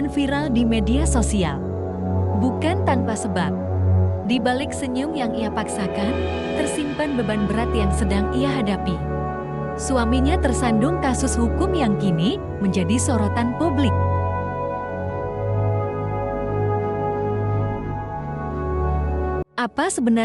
viral di media sosial. Bukan tanpa sebab. Di balik senyum yang ia paksakan, tersimpan beban berat yang sedang ia hadapi. Suaminya tersandung kasus hukum yang kini menjadi sorotan publik. Apa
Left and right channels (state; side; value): identical; both; correlation 1.00